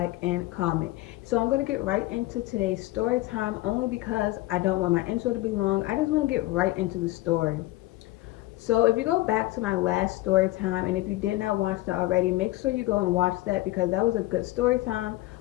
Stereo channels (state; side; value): quieter; right; 18.2 dB